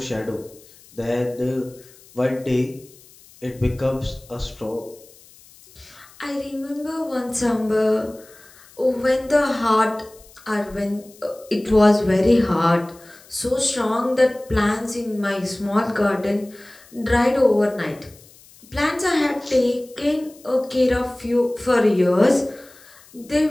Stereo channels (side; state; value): left; noise; hiss, 25 dB below the sound